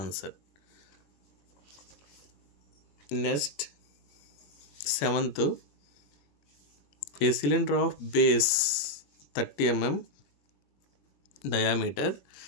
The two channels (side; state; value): right; late; 21 ms